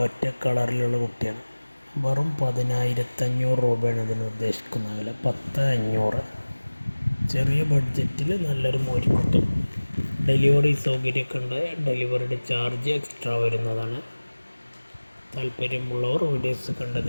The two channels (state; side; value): inverted; both; correlation -1.00